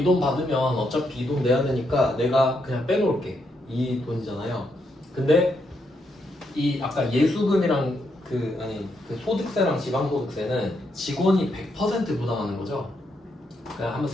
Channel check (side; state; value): both; normal; correlation 0.79